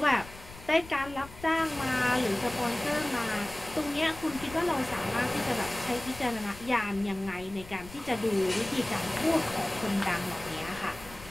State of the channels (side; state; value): left; noise; rumble, 17 dB below the sound